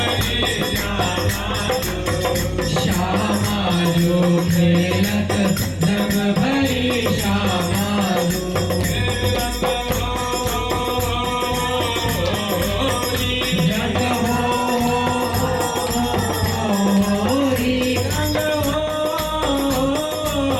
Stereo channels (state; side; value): identical; both; correlation 1.00